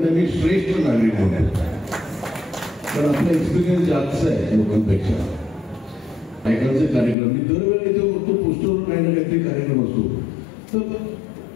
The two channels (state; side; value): drops out; right; at 7.2 s